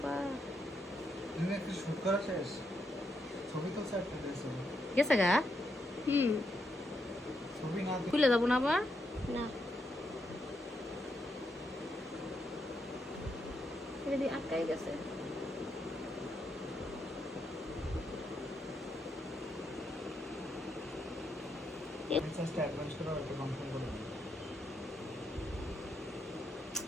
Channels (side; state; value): both; normal; correlation 0.80